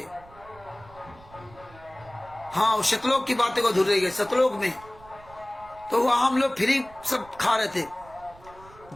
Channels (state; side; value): noise; right; rumble, 23 dB below the sound